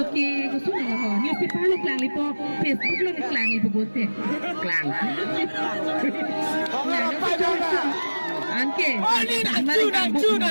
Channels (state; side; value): inverted; both; correlation -1.00